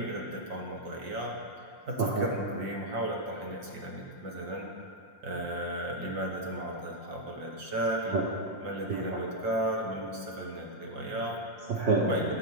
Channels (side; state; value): left; late; 6.3 ms